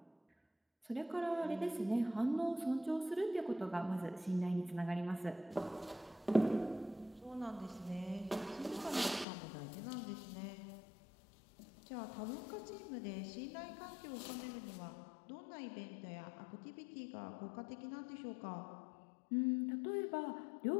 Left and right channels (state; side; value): drops out; right; at 9.2 s